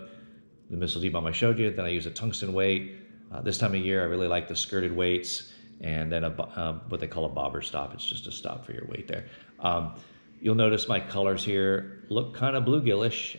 The Missile D-Bomb I showed you. Then I use a tungsten weight. This time of year, I really like the skirted weights, and then what they call a bobber stop. It's just a stop for your weight there. You'll notice my colors here look kind of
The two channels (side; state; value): both; inverted; correlation -1.00